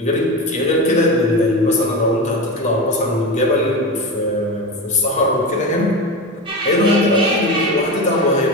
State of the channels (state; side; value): normal; both; correlation 0.22